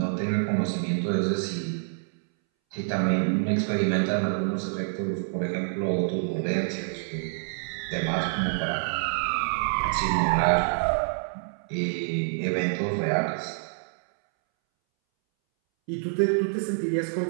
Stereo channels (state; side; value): silent; left; 60 dB below the other